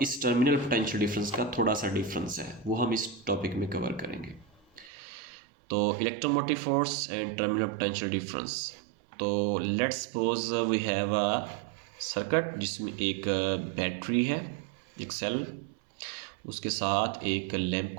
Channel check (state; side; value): drops out; left; at 4.9 s